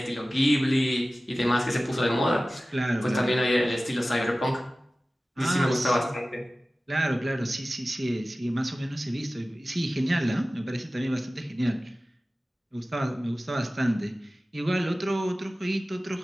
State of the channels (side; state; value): both; normal; correlation 0.96